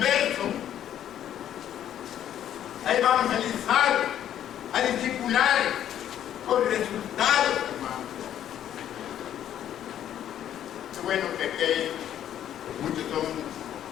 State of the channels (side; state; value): right; quieter; 10.8 dB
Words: a evangelizar, a discipular con resultados, hermano. Qué bueno que muchos son